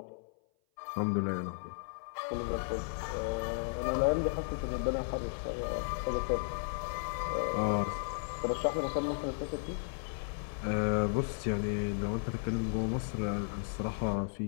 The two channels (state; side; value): silent; right; 55 dB below the other